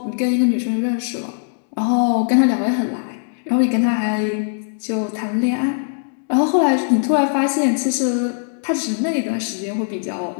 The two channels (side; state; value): right; silent; digital silence